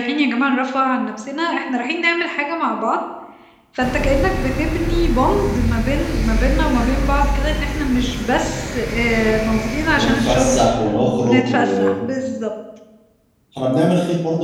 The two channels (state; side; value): identical; both; correlation 1.00